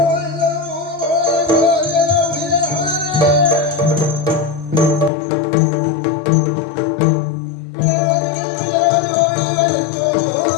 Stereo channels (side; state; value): right; drops out; at 5.1 s